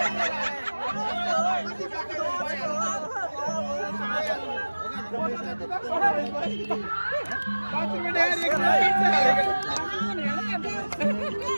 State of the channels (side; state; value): both; inverted; correlation -1.00